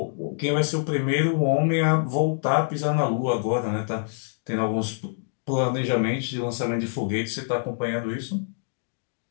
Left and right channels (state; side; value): silent; right; digital silence